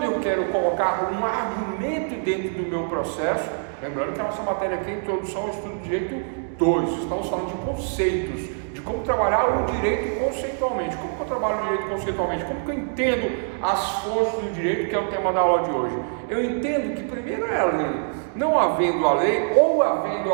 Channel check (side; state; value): left; silent; digital silence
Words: eu quero colocar um argumento dentro do meu processo, lembrando que a nossa matéria aqui é Introdução ao Estudo de Direito 2, estamos falando de conceitos, de como trabalhar o direito conceitualmente. Como que eu trabalho o direito conceitualmente? Como que eu entendo as fontes do direito, que é o tema da aula de hoje? Eu entendo que primeiro é a lei. Não havendo a lei, ou havendo